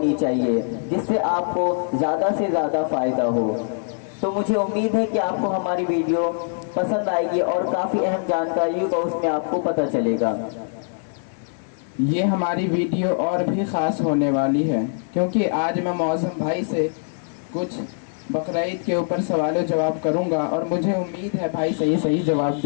चाहिए जिससे आपको ज़्यादा से ज़्यादा फ़ायदा हो। तो मुझे उम्मीद है कि आपको हमारी वीडियो पसंद आएगी और काफ़ी अहम जानकारी का उसमें आपको पता चलेगा। ये हमारी वीडियो और भी ख़ास होने वाली है क्योंकि आज मैं मौसम भाई से कुछ बकरा ईद के ऊपर सवाल जवाब करूंगा और मुझे उम्मीद है भाई सही जवाब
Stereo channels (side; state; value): right; silent; digital silence